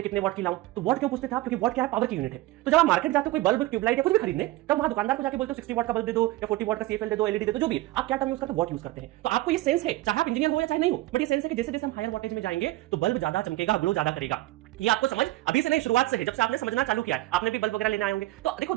कितने वॉट की लाऊं, तो वॉट क्यों पूछते थे आप, क्योंकि वॉट क्या है, पावर की यूनिट है। तो जब आप मार्केट जाते हो कोई बल्ब ट्यूबलाइट या कुछ भी खरीदने, तब वहां दुकानदार को जाके बोलते हो 60 वॉट का बल्ब दे दो या 40 वॉट का सीएफएल दे दो, एलईडी दे दो, जो भी आप क्या टर्म यूज करते हो, वॉट यूज करते हैं। तो आपको ये सेंस है, चाहे आप इंजीनियर हो या चाहे नहीं हो, बट ये सेंस है कि जैसे जैसे हम हायर वोल्टेज में जाएंगे तो बल्ब ज्यादा चमकेगा, ग्लो ज्यादा करेगा। ये आपको समझ अभी से नहीं, शुरुआत से है, जब से आपने समझना चालू किया है, आपने भी बल्ब वगैरह लेने आए होंगे। तो देखो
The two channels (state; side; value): quieter; left; 17.9 dB